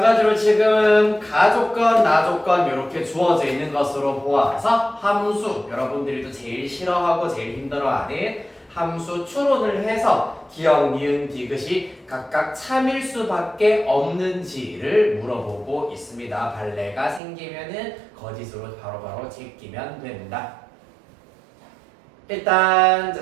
지금 가조건, 나조건 이렇게 주어져 있는 것으로 보아서 함수, 여러분들이 또 제일 싫어하고 제일 힘들어하는 함수 추론을 해서 기억, 니은, 디귿이 각각 참일 수밖에 없는지를 물어보고 있습니다. 발레가 생기면은 거짓으로 바로바로 제끼면 된다. 일단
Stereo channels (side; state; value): left; drops out; at 17.2 s